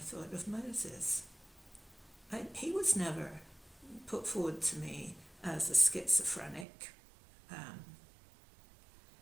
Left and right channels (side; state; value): left; drops out; at 6.7 s